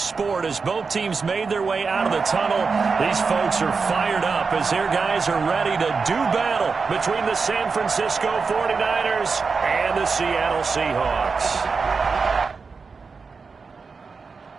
as both teams made their way out of the tunnel. These folks are fired up as their guys are ready to do battle between the San Francisco 49ers and the Seattle Seahawks.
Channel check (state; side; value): quieter; left; 4.9 dB